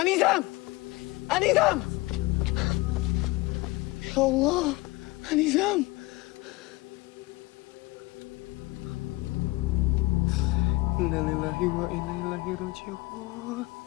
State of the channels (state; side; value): quieter; right; 20.6 dB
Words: Anizam! Ya Allah, Anizam! Inna lillahi wa inna ilaihi raji'un.